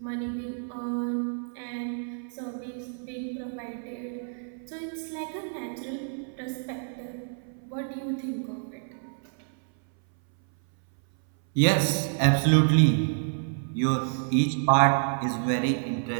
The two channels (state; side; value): silent; left; 59 dB below the other